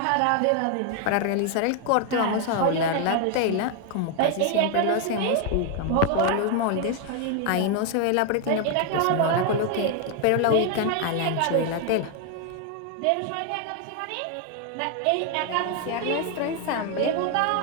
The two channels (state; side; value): different; both; correlation 0.01